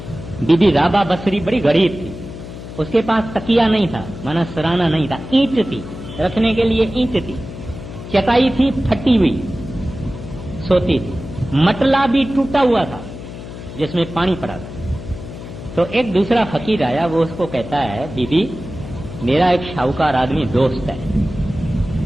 बीबी राबा बसरी बड़ी गरीब थी, उसके पास तकिया नहीं था, माना सराना नहीं था, ईंट थी, रखने के लिए ईंट थी, चटाई थी फटी हुई, सोती थी, मटला भी टूटा हुआ था जिसमें पानी पड़ा था। तो एक दूसरा फकीर आया, वो उसको कहता है, बीबी मेरा एक शाहूकार आदमी दोस्त है,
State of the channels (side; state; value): left; noise; hum, 12 dB below the sound